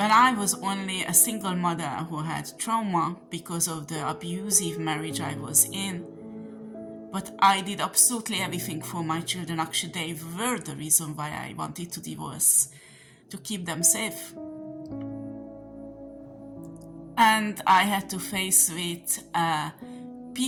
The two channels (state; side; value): identical; both; correlation 1.00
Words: I was only a single mother who had trauma because of the abusive marriage I was in. But I did absolutely everything for my children. Actually, they were the reason why I wanted to divorce, to keep them safe. And I had to face with